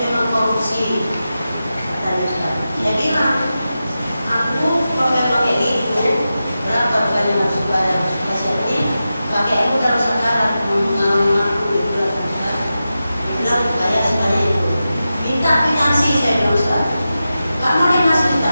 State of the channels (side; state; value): both; inverted; correlation -0.92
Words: memang korupsi, katanya Ustaz. Dia bilang, aku kalau pakai itu berapa bukannya masuk bayar ini pakai aku dalam sekarang mengalami aku itu Ustaz. Dia bilang bayar sekali itu. Minta finansi saya bilang Ustaz. Kamu dia masih